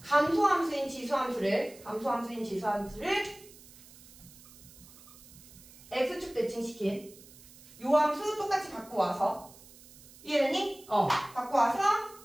감소함수인 지수함수를 x축 대칭시킨 요 함수 똑같이 갖고 와서 이해되니? 갖고 와서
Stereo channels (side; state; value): right; noise; hiss, 21 dB below the sound